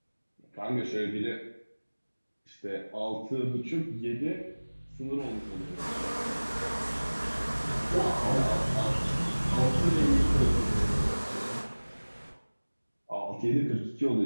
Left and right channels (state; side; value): inverted; both; correlation -1.00